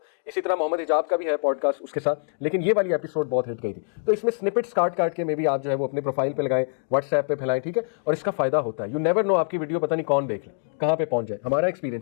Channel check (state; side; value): silent; right; digital silence